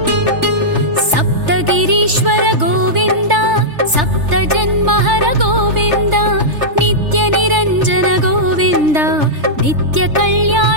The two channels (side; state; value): left; late; 3.3 ms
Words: सप्तगिरीश्वर गोविन्द सप्तजन्महर गोविन्द नित्यनिरञ्जन गोविन्द